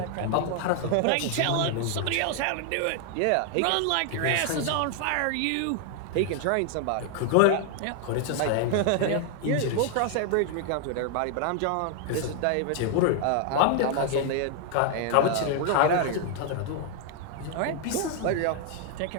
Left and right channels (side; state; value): both; different; correlation 0.00